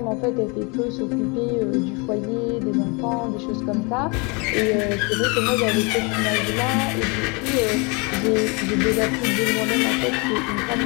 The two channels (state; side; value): quieter; right; 30.3 dB